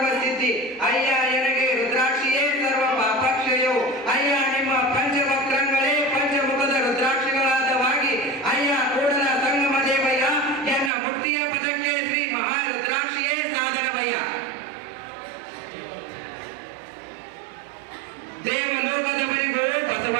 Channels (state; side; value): drops out; left; at 10.9 s